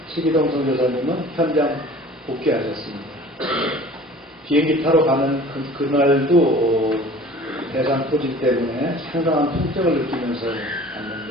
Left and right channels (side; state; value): both; normal; correlation 0.45